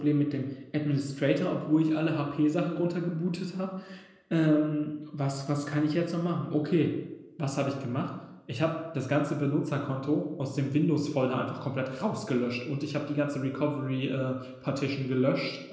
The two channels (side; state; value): both; identical; correlation 1.00